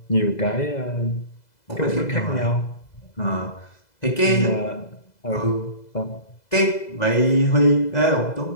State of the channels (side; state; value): right; late; 2.0 ms